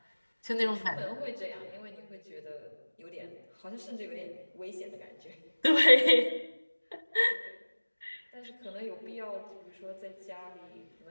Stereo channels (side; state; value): both; inverted; correlation -1.00